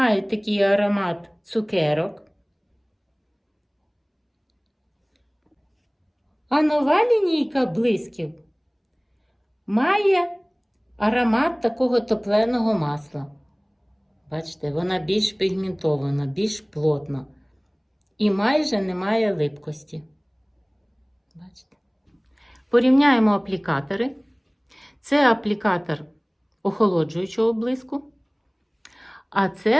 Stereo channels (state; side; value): identical; both; correlation 1.00